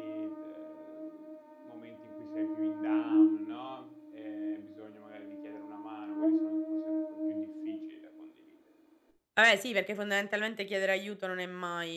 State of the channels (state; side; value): identical; both; correlation 1.00